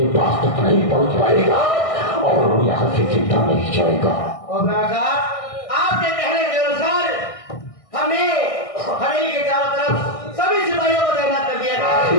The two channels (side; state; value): right; late; 1.6 ms